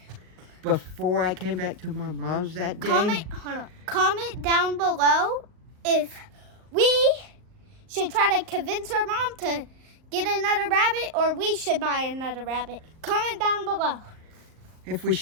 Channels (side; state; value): left; late; 38 ms